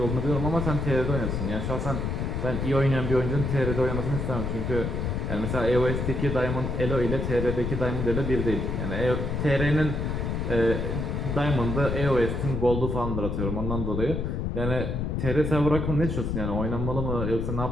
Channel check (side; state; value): left; noise; rumble, 1 dB below the sound